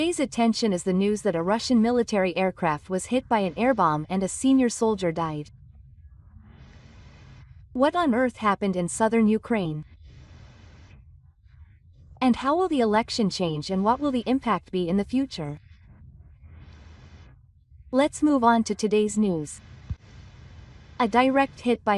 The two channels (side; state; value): both; identical; correlation 1.00